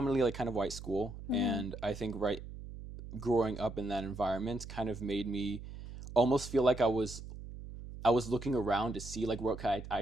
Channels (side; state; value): right; noise; hum, 12 dB below the sound